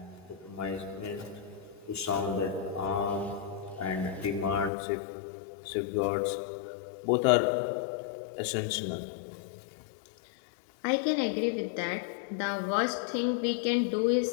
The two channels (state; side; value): drops out; right; at 4.7 s